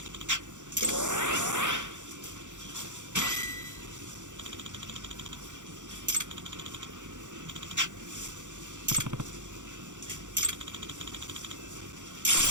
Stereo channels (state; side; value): late; left; 0.85 ms